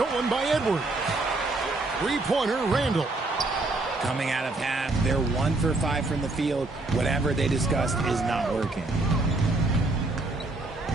by Edwards. Three-pointer, Randall. Coming out of half, they're 1 for 5 from the field. Whatever they discussed is not working.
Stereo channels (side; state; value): left; quieter; 3.1 dB